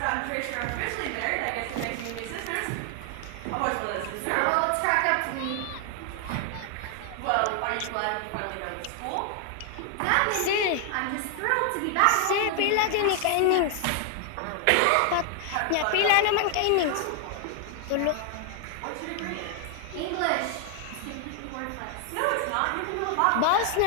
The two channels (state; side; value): different; both; correlation 0.00